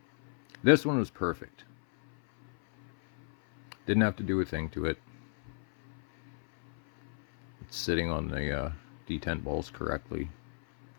This one was perfect. Didn't have to do a thing to it. It's sitting on the detent balls correctly.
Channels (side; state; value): right; silent; 56 dB below the other